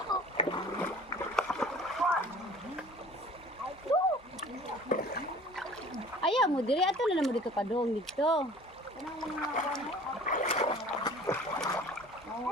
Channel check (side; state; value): both; normal; correlation 0.47